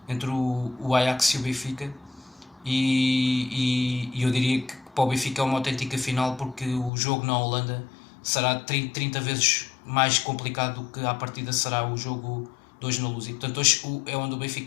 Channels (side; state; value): right; drops out; at 6.9 s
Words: entre o Ajax e o Benfica e eu diria que para o Benfica é uma autêntica final, porque o jogo na Holanda será 30 vezes mais complicado do que à partida será o jogo de hoje na Luz. E portanto hoje é onde o